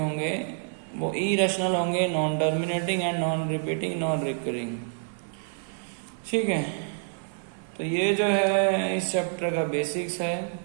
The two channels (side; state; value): left; silent; digital silence